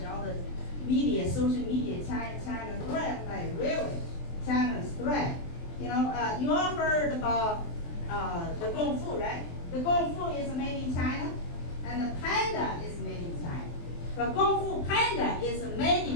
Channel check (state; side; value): late; right; 23 ms